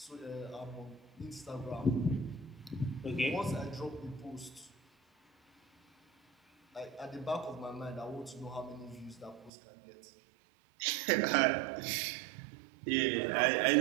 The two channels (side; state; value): left; drops out; at 9.5 s